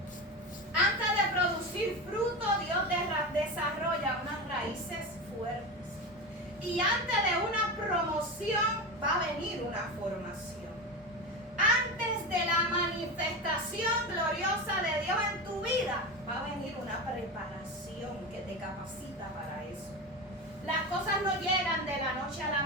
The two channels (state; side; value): normal; both; correlation 0.22